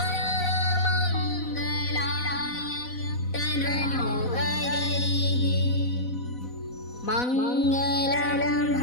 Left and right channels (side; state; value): right; late; 4.0 ms